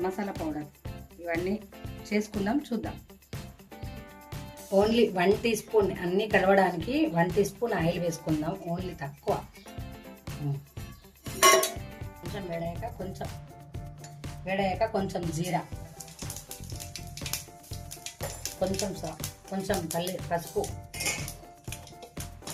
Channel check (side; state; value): both; identical; correlation 1.00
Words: మసాలా పౌడర్ ఇవన్నీ చేసుకుందాం, చూద్దాం. ఓన్లీ 1 టీ స్పూన్, అన్నీ కలవడానికి 1 టీ స్పూన్ ఆయిల్ వేసుకుందాం, ఓన్లీ తక్కువ. కొంచెం వేడయ్యాక కొంచెం జీరా, కొంచెం పసుపు,